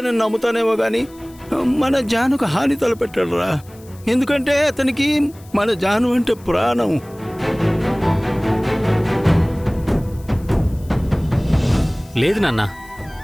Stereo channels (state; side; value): noise; left; hiss, 26 dB below the sound